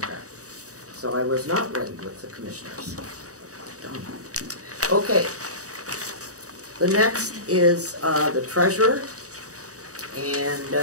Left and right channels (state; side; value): late; left; 0.66 ms